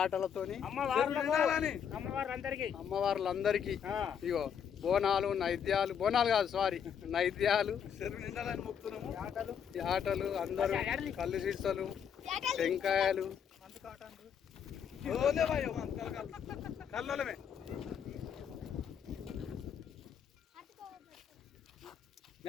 అమ్మవార్లందరికీ ఇగో బోనాలు నైద్యాలు, బోనాలు కాదు సారీ నైద్యాలు, యాటలు అందరూ కళ్ళు సీసలు టెంకాయలు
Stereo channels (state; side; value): quieter; right; 7.9 dB